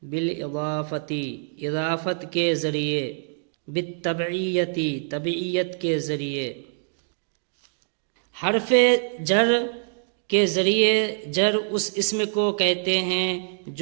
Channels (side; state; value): left; silent; digital silence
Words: بالاضافتی اضافت کے ذریعے، بالتبعیتی تبعیت کے ذریعے۔ حرف جر کے ذریعے جر اس اسم کو کہتے ہیں